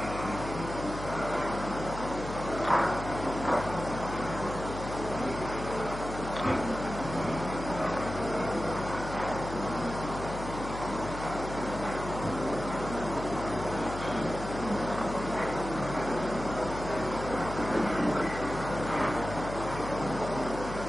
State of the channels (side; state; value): left; noise; hum, 8 dB below the sound